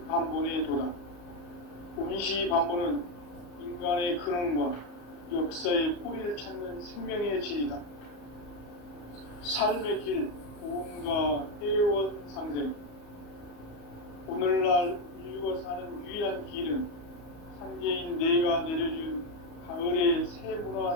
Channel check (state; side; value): late; right; 34 ms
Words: 도다. 운시반본은 인간의 근원과 역사의 뿌리를 찾는 생명의 진리다. 삶의 길, 복음과 해원 상생. 오늘날 인류가 사는 유일한 길은 상제인 내가 내려준 가을의 새